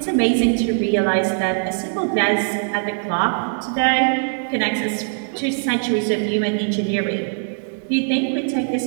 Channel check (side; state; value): left; silent; digital silence